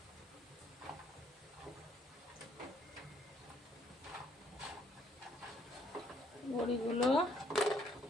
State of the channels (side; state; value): both; normal; correlation 0.66